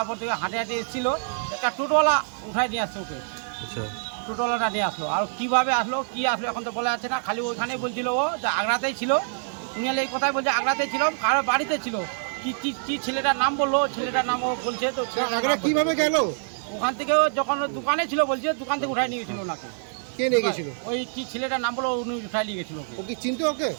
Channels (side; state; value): left; silent; digital silence